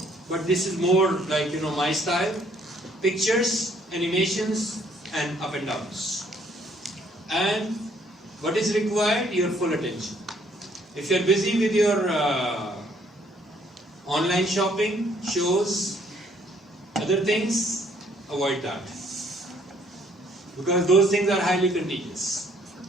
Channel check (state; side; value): normal; both; correlation 0.64